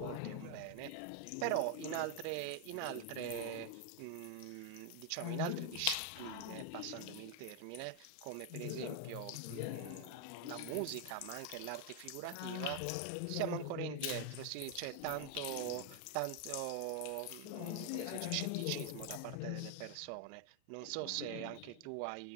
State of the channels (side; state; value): both; different; correlation 0.01